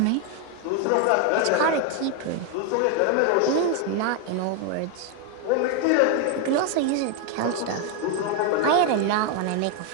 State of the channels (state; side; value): different; both; correlation 0.01